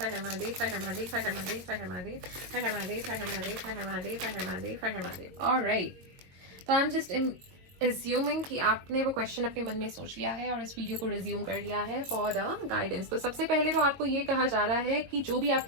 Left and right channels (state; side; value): late; left; 22 ms